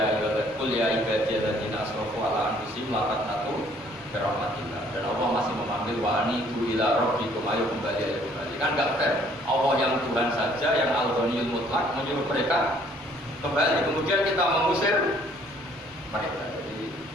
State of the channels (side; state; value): both; normal; correlation 0.61